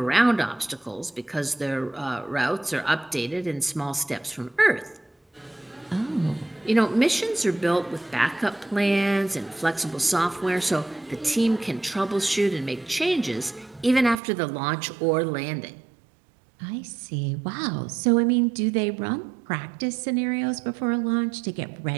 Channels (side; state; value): left; drops out; at 14.2 s